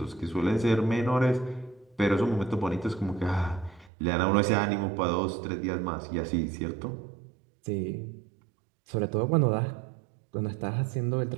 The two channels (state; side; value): drops out; left; at 3.9 s